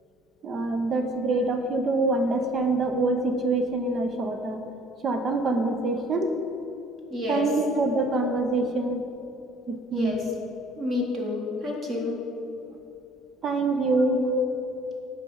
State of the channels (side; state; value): both; normal; correlation 0.55